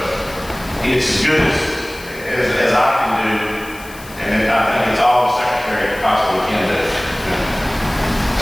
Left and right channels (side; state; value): left; noise; hiss, 19 dB below the sound